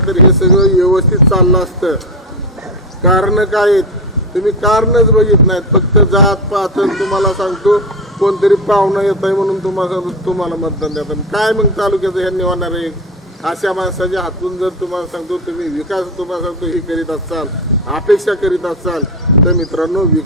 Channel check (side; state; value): both; normal; correlation 0.17